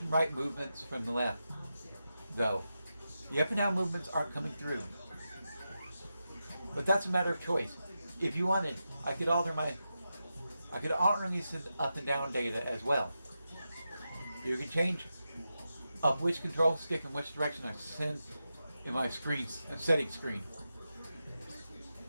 and right movements from the left, though. The up and down movements aren't coming through. But that's a matter of choice. If you wanted, I could alternately send up and down data as well. You can change up which control stick in which direction I send in my settings screen.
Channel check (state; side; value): inverted; both; correlation -0.89